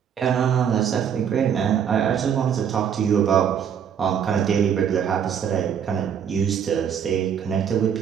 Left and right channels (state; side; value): quieter; left; 8.2 dB